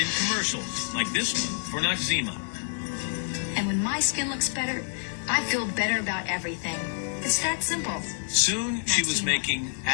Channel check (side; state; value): right; silent; 60 dB below the other